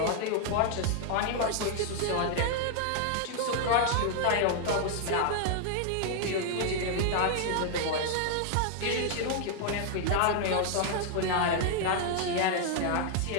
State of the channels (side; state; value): both; different; correlation 0.00